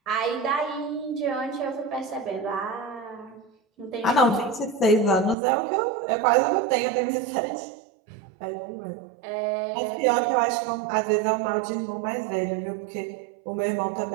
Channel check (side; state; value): left; drops out; at 5.4 s